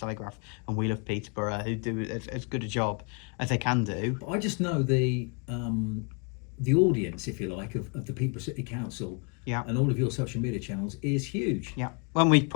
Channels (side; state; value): right; quieter; 35.0 dB